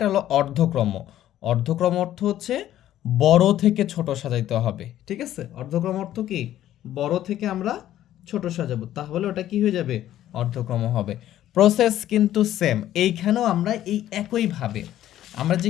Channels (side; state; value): right; quieter; 12.6 dB